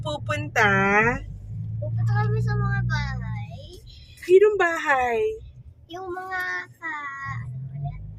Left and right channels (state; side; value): identical; both; correlation 1.00